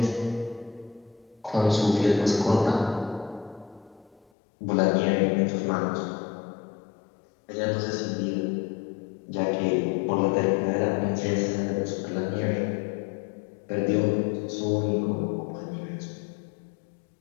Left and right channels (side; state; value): right; drops out; at 4.2 s